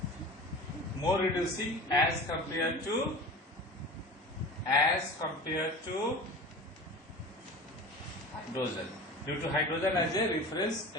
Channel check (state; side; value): normal; both; correlation 0.35